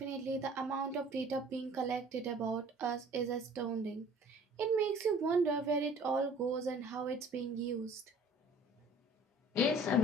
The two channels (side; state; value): both; normal; correlation 0.51